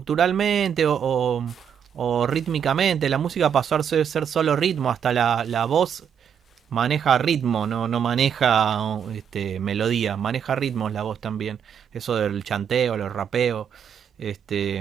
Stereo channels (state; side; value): quieter; left; 8.1 dB